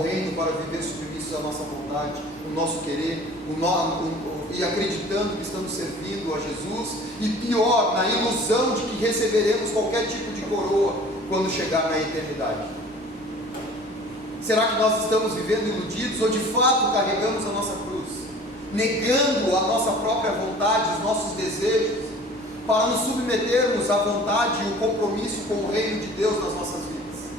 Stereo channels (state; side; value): normal; both; correlation 0.46